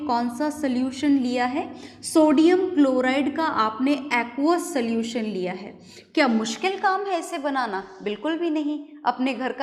सा सोल्यूशन लिया है, सोडियम क्लोराइड का आपने एक्वस सोल्यूशन लिया है, क्या मुश्किल काम है इसे बनाना? बिल्कुल भी नहीं। अपने घर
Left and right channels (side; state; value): both; identical; correlation 1.00